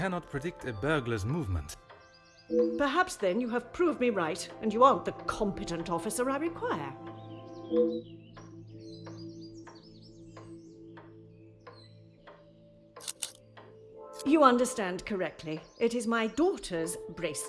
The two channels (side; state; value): both; identical; correlation 1.00